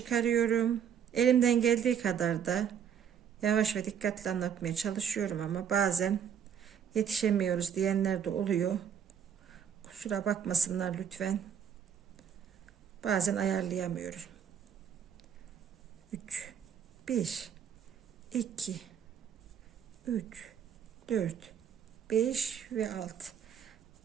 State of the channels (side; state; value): left; quieter; 8.2 dB